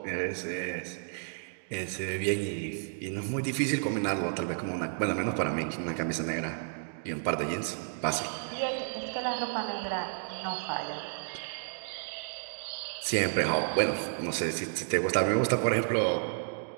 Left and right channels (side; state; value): left; silent; digital silence